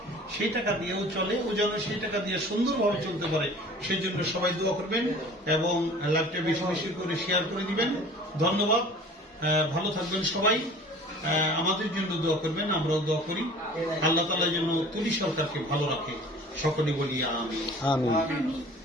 সেই টাকা দিয়েও চলে। ও যেন সেই টাকা দিয়ে সুন্দরভাবে চলতে পারে, সেই জন্য সবাই দোয়া করবেন এবং লাইভটা বেশি বেশি করে শেয়ার করে দিবেন। ধন্যবাদ, ভালো থাকবেন সবাই। আমাদের জন্য দোয়া করবেন, আমরাও দোয়া করি। আল্লাহ তাআলা যেন তুলি সরকারকে ভালো রাখে, সকলে বলি আমিন।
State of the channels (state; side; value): normal; both; correlation 0.45